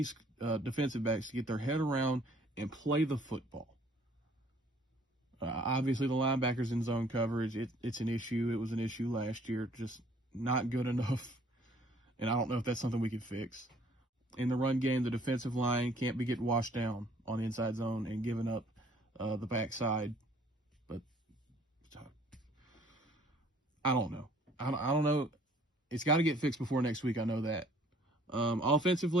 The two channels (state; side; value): normal; both; correlation 0.58